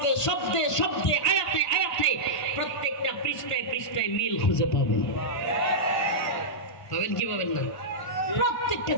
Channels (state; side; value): late; right; 1.5 ms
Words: শব্দে শব্দে, আয়াতে আয়াতে, প্রত্যেকটা পৃষ্ঠায় পৃষ্ঠায় মিল খুঁজে পাবেন। পাবেন কি পাবেন না? প্রত্যেকটা